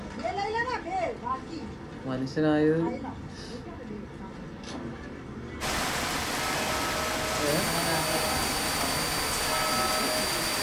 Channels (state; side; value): identical; both; correlation 1.00